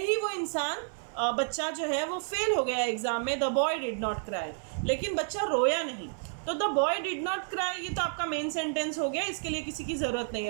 ही वो इंसान बच्चा जो है वो फेल हो गया एग्जाम में, the boy did not cry, लेकिन बच्चा रोया नहीं। तो the boy did not cry ये तो आपका मेन सेंटेंस हो गया, इसके लिए किसी की ज़रूरत नहीं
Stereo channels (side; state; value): left; silent; 57 dB below the other